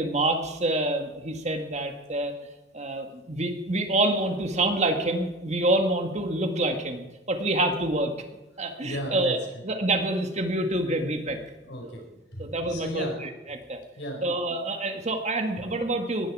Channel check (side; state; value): both; normal; correlation 0.33